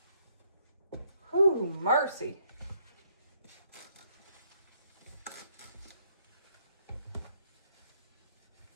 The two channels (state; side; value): inverted; both; correlation -0.70